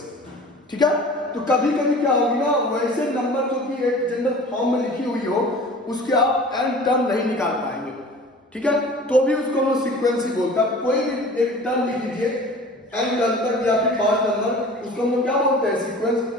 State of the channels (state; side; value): normal; both; correlation 0.43